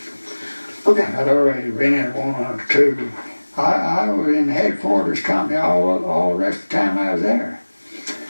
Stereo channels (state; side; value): inverted; both; correlation -1.00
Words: Okay. I'd already been in 1 or 2. I was in the headquarters company all the rest of the time I was there.